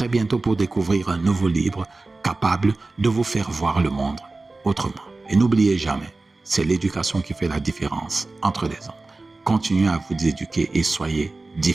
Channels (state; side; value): quieter; left; 3.3 dB